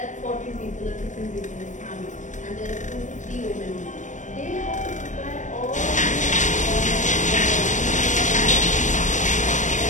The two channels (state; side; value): late; right; 0.36 ms